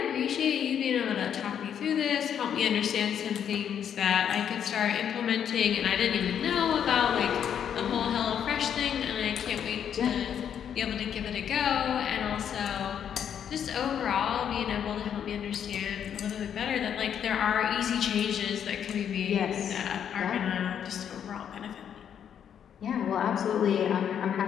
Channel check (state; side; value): quieter; right; 8.7 dB